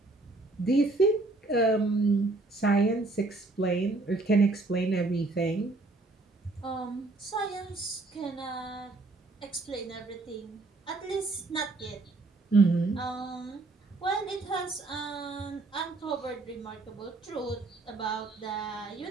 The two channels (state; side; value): quieter; left; 3.2 dB